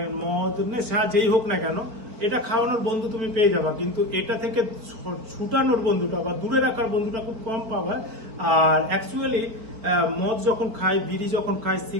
মদ, নেশা যেই হোক না কেন, এটা খাওয়ানোর বন্ধু তুমি পেয়ে যাবা, কিন্তু এটা থেকে ছুটানোর বন্ধুটা বা দূরে রাখার বন্ধুটা খুব কম পাবা। আর অ্যাকচুয়ালি মদ যখন খায়, বিড়ি যখন খায়,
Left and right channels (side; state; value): left; late; 4.5 ms